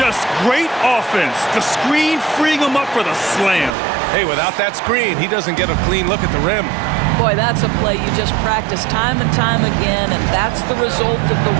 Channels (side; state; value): left; drops out; at 3.7 s